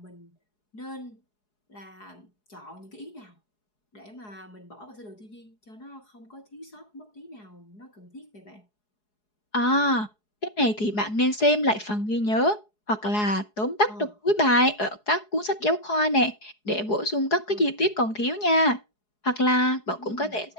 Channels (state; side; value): late; right; 4.8 ms